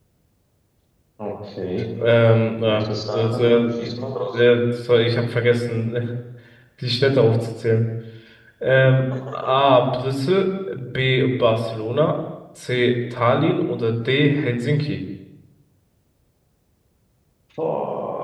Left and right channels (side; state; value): both; identical; correlation 1.00